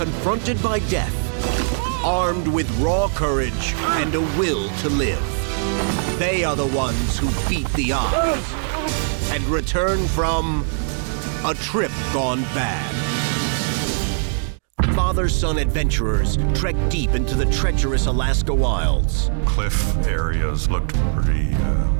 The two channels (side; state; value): left; silent; digital silence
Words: by death, armed with raw courage and a will to live. They are the ones who beat the odds and return from a trip gone bad. Father-son adventurers trek deep into the treacherous Alaska wilds. Cliff areas looked pretty